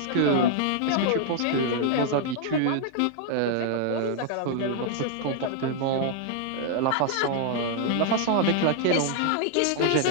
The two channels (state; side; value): different; both; correlation -0.01